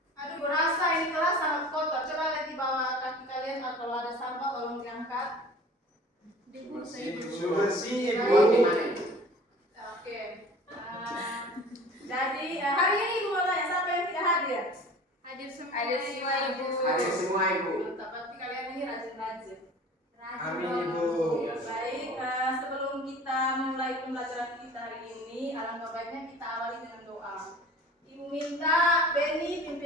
Aduh, berasa ini kelas sangat kotor. Coba lihat di bawah kaki kalian kalau ada sampah tolong diangkat. Bersih, Ibu. Oke. Jadi hari ini Ibu mau tanya siapa yang tidak hadir? Hadir semua, Ibu. Hadir semua, Ibu. Mantap, berarti kalian ini rajin-rajin. Amin, Ibu. Baik, sebelum kita mulai pembelajaran kita hari ini, alangkah baiknya kita awali dengan doa. Ibu minta Benny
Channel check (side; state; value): both; normal; correlation 0.43